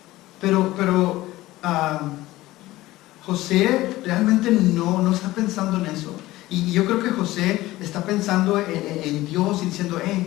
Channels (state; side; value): quieter; right; 17.4 dB